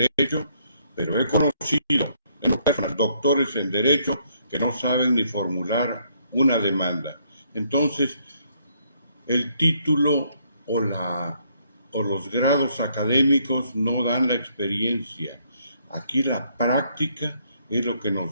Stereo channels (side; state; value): both; inverted; correlation -0.70